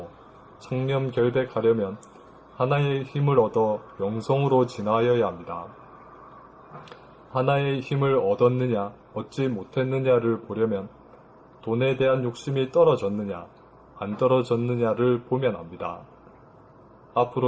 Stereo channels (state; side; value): identical; both; correlation 1.00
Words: 청렴결백하려면 하나의 힘을 얻어 영성으로 진화하여야 합니다. 하나의 힘을 얻었느냐 얻지 못했느냐를 보려면 돈에 대한 욕심이 떨어졌느냐 안 떨어졌느냐를 보면 압니다.